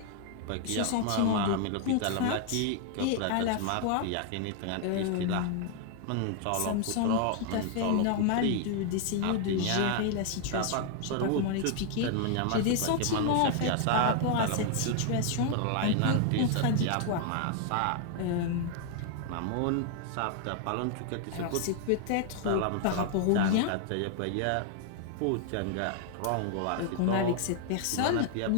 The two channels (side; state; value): both; different; correlation 0.00